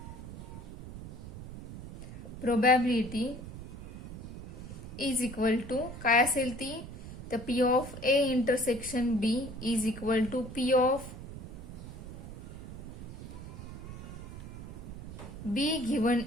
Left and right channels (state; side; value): noise; right; rumble, 11 dB below the sound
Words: probability is equal to काय असेल ती तर P of A intersection B is equal to P of B given